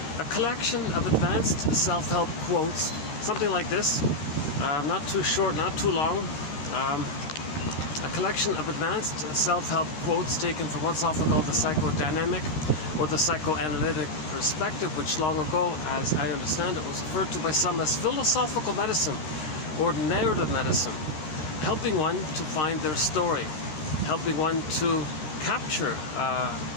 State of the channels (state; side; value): late; right; 13 ms